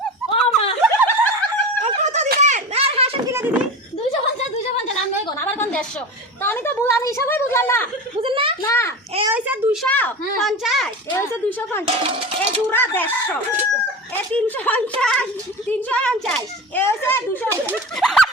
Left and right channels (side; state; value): both; normal; correlation 0.29